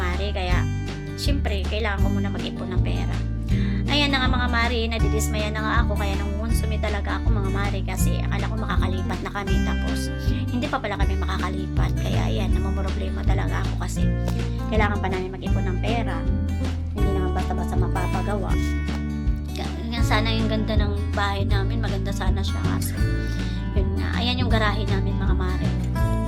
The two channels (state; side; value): identical; both; correlation 1.00